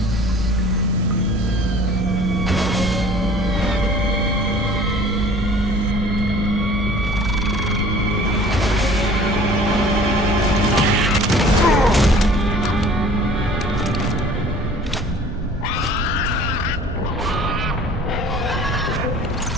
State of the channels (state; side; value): normal; both; correlation 0.49